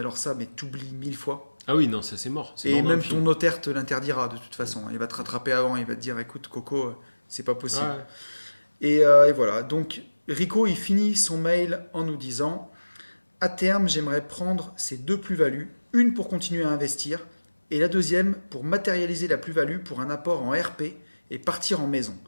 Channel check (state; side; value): inverted; both; correlation -1.00